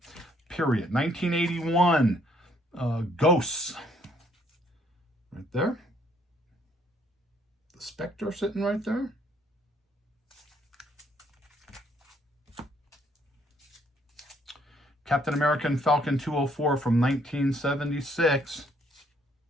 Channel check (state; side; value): normal; both; correlation 0.66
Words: Period. 1981, Ghosts. Right there. The Spectre sitting right there. Captain America and Falcon 204 from 1976.